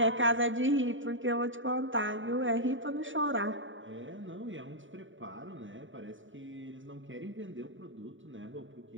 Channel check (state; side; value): late; left; 0.56 ms